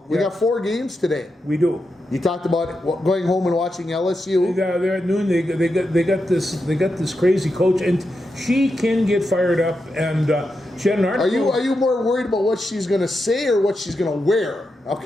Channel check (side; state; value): both; normal; correlation 0.87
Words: We got 4 games today. We do. You talked about going home and watching LSU. They're at noon. They got this crazy coach, and she can get fired up. And she had an article. Are you more worried about what she's going to say or what she's going to wear?